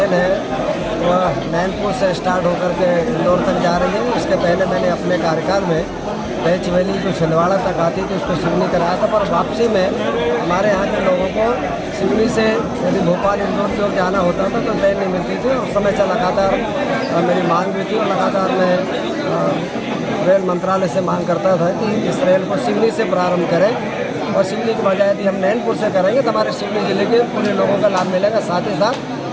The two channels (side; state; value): both; identical; correlation 1.00